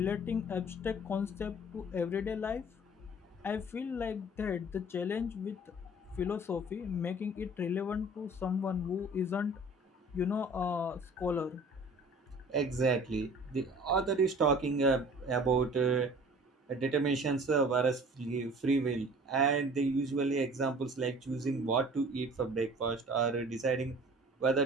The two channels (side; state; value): both; normal; correlation 0.47